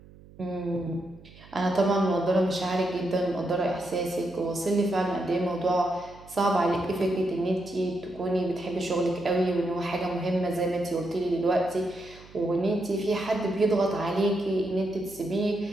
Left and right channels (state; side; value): noise; right; hum, 22 dB below the sound